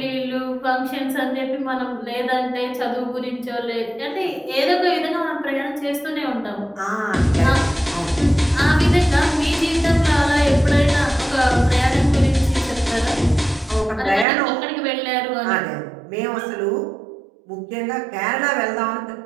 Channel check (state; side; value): drops out; left; at 14.2 s